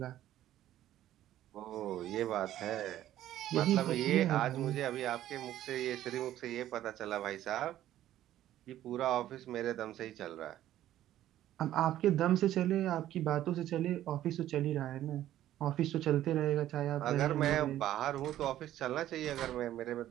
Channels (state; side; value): quieter; left; 12.9 dB